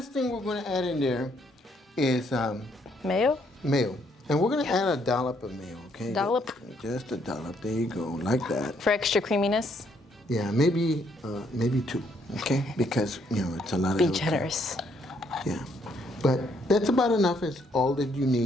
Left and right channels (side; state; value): both; normal; correlation 0.70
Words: thing we're going to add in there is Mayo? mayo. And we're going to add a dollop of mayo, okay? Dollop? Just a dollop. There you go, like that. For extra creaminess? Yeah, maybe 2, okay? Because, it's a lot of Be avocado. generous. Yeah. But that's about enough. Is all that you